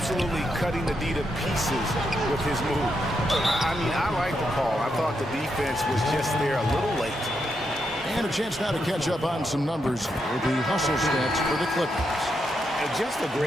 cutting the D to pieces with his move. I mean, I like the call. I thought the defense was just there a little late. And a chance now to catch up on some numbers with the hustle stats for the Clippers. And just a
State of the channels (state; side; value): normal; both; correlation 0.82